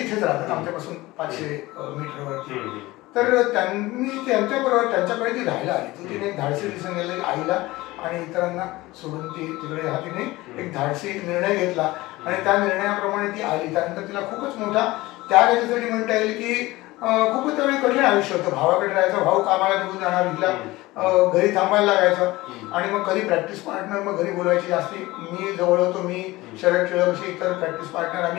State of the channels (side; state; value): right; quieter; 19.5 dB